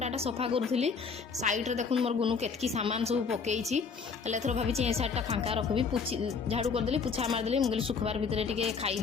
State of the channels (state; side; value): quieter; right; 5.4 dB